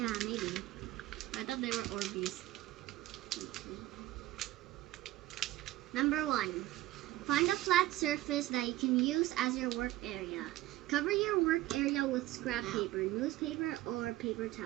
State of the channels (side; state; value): left; quieter; 16.3 dB